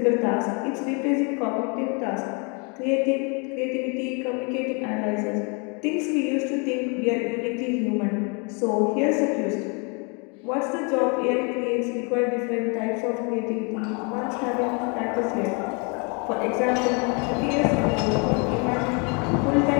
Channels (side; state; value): right; quieter; 33.8 dB